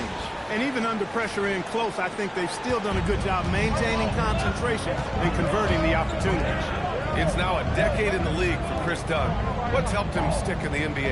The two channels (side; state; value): both; identical; correlation 1.00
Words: And even under pressure in close, I think they've still done a good job maintaining concentration and converting the opportunities. It's now a decade in the league for Chris Dunn. What's helped him stick in the